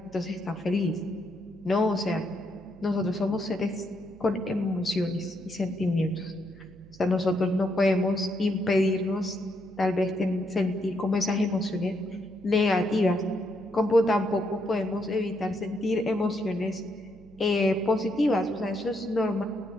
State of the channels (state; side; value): noise; right; hum, 23 dB below the sound